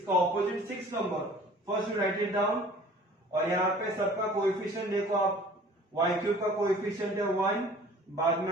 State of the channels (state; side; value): normal; both; correlation 0.48